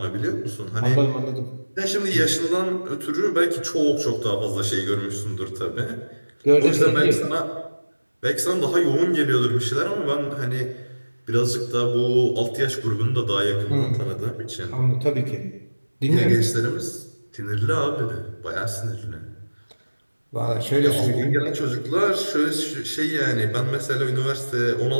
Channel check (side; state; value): both; inverted; correlation -1.00